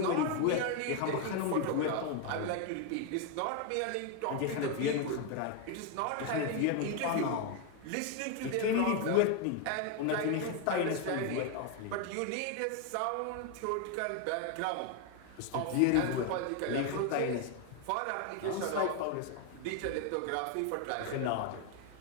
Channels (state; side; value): different; both; correlation 0.01